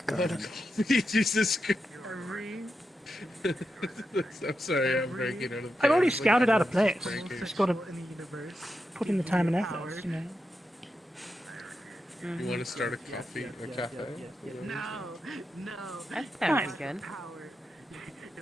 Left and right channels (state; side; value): normal; both; correlation 0.87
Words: garden. Jesus Christ. I'm sorry, I'm breaking out of. I've already pants. scouted out a place. Breaking. Just got to In the universe. put in the time and effort, you know. You want to start a cafe? No, no. That sounds Nice. good. Power.